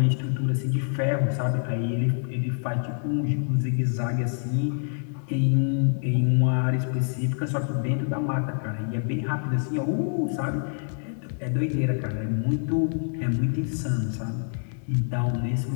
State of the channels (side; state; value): right; silent; digital silence